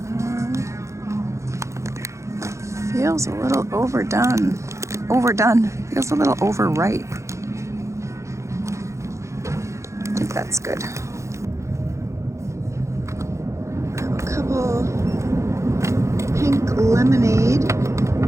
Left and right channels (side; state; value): left; late; 0.14 ms